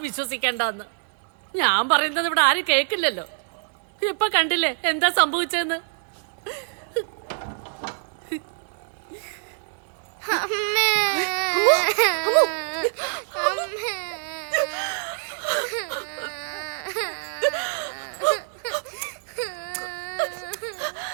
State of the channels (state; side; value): silent; left; digital silence